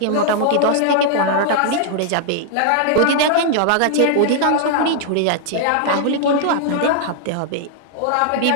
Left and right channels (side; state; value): both; different; correlation -0.01